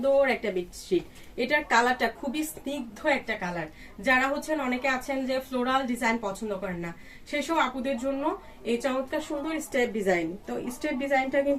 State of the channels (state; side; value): identical; both; correlation 1.00